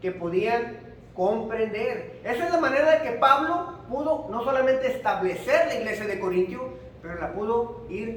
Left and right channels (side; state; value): both; identical; correlation 1.00